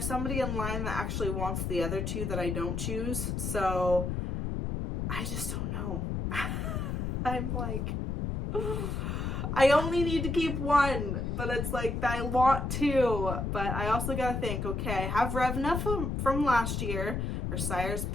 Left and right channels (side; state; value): left; noise; rumble, 2 dB below the sound